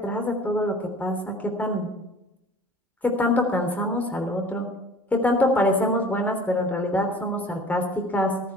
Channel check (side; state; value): both; normal; correlation 0.46